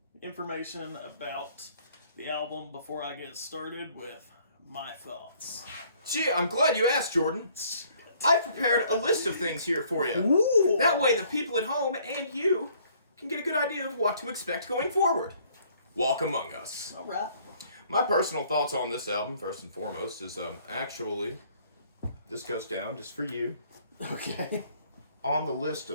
information about the album before I get started with my thoughts? Gee, I'm glad you asked, Jordan. I prepared a list of things here for you. Ooh. That way the people at home and you can get a good idea of what to expect going forward. Walk Among Us. All right. My personal thoughts on this album, first and foremost, is actually, this goes down just for you. Okay. On the list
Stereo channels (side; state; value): both; inverted; correlation -0.61